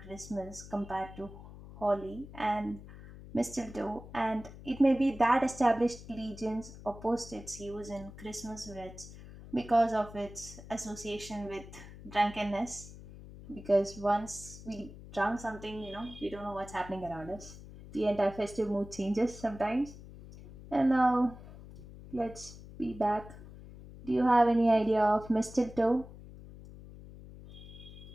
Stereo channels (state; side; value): noise; left; hum, 16 dB below the sound